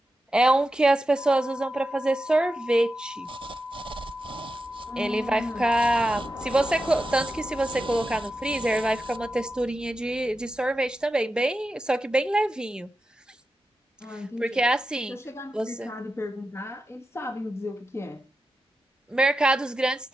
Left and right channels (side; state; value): both; normal; correlation 0.90